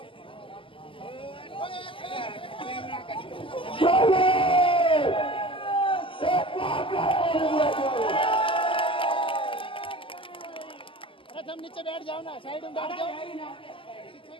अरे तुम नीचे बैठ जाओ ना, साइड में बैठ जाओ, पीछे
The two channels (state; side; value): late; right; 0.25 ms